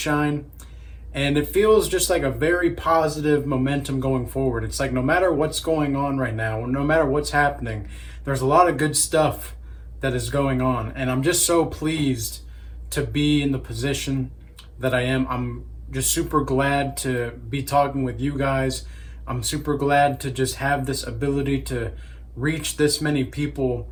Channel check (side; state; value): both; identical; correlation 1.00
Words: And it feels just like a very positive momentum going forward. It's like no matter what's going on right now, no matter what's happening, there's a lot of good stuff that is going on. And I'm just so pleased to be in the position that I am. I'm just super glad to be talking with you guys. I'm super glad to just have this ability to reach this many people